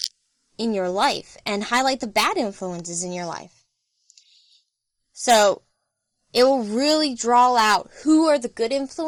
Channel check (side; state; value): both; identical; correlation 1.00